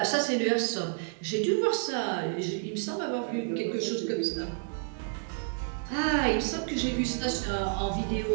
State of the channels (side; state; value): left; silent; digital silence